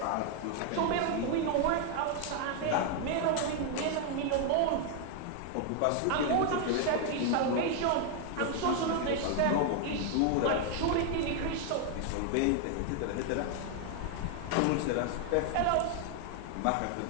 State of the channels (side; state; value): both; different; correlation 0.00